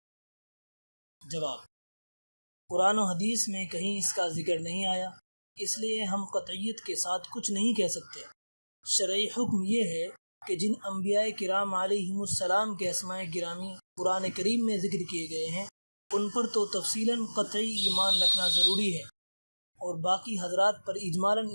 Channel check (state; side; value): inverted; both; correlation -1.00